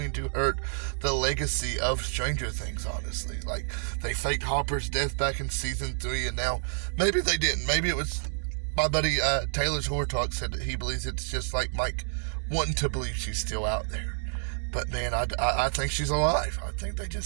to hurt the legacy of Stranger Things, honestly. Like, they faked Hopper's death back in season 3, and now, maybe they didn't. Maybe it was, my buddy Taylor's Horror Talk said that he believes it's just like Mike wanting to believe she's still out there. But man, I think she's alive. I think they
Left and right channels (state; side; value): silent; left; digital silence